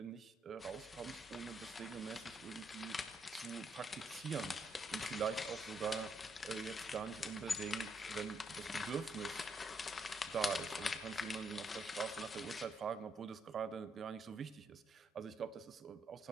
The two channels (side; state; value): both; normal; correlation 0.75